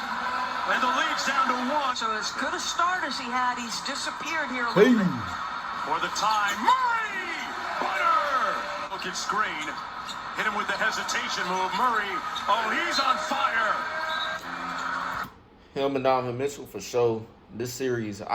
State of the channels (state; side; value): identical; both; correlation 1.00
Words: And the lead's down to 1. So as good a start as he had, he's disappeared here a little bit. For the time, Murray! Butter! Look at screen. Hit him with the hesitation move. Murray, oh, he's on fire! Him and Donovan Mitchell for sure. This series,